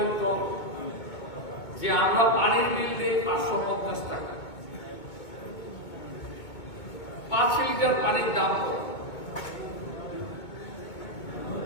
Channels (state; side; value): late; right; 2.2 ms